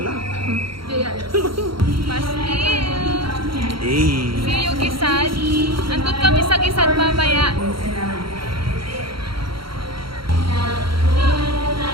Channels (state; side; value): late; left; 0.74 ms